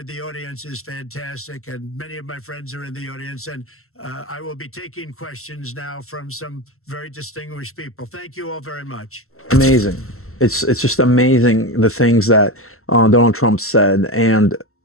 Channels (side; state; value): right; late; 0.63 ms